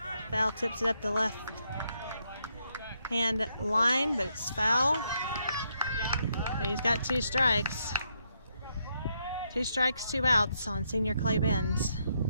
Foul tips it up the left hand line, but it's foul. So he's got 2 strikes. 2 strikes, 2 outs on senior Clay Benz.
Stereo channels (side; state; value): both; inverted; correlation -0.77